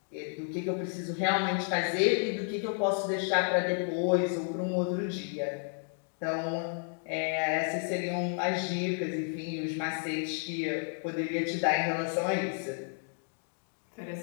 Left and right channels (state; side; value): silent; right; 57 dB below the other